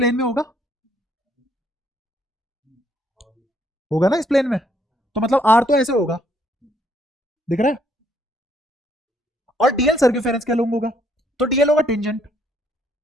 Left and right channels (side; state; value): both; normal; correlation 0.69